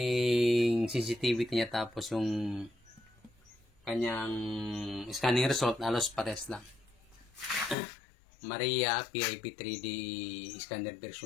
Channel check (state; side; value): drops out; right; at 7.8 s